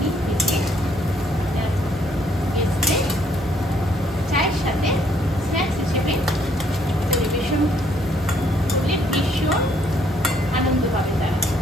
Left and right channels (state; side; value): normal; both; correlation 0.67